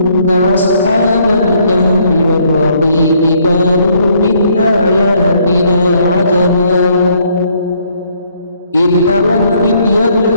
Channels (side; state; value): both; inverted; correlation -0.67